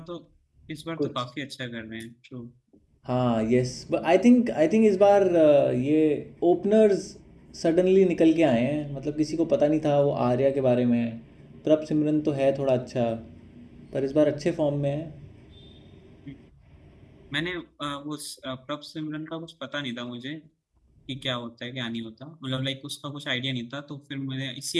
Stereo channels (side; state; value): both; identical; correlation 1.00